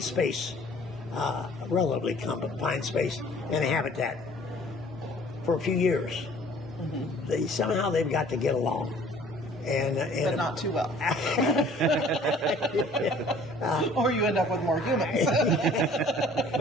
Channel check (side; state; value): both; normal; correlation 0.53